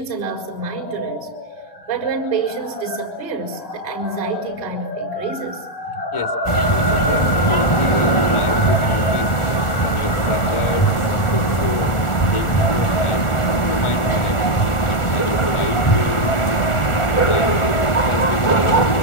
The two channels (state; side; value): late; right; 1.4 ms